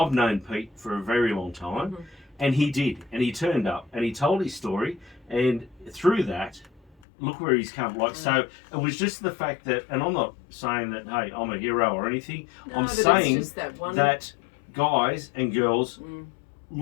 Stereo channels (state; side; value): drops out; right; at 6.9 s